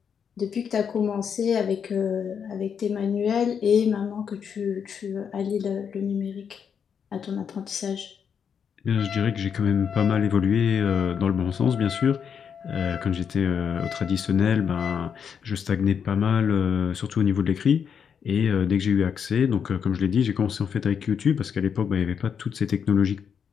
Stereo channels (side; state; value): right; quieter; 7.2 dB